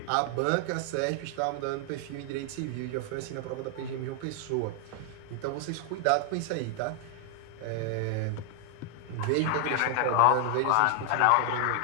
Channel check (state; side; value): different; both; correlation 0.00